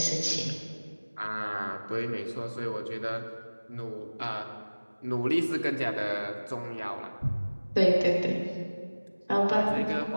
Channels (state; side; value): inverted; both; correlation -1.00